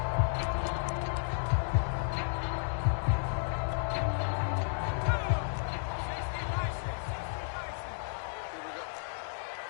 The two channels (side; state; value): right; silent; digital silence